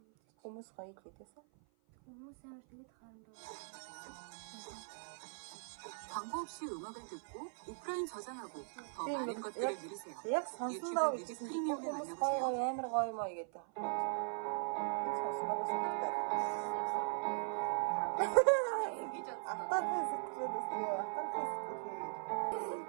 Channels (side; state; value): left; silent; 51 dB below the other